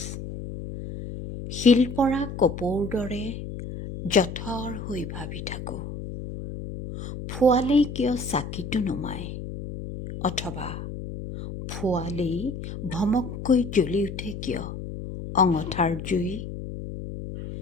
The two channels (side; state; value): left; noise; hum, 8 dB below the sound